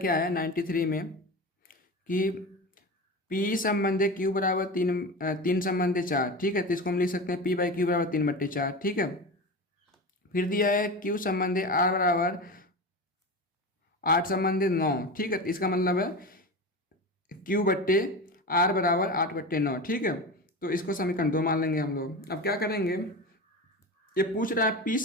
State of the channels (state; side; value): normal; both; correlation 0.26